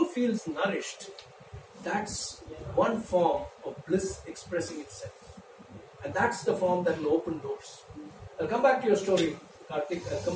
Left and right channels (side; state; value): both; identical; correlation 1.00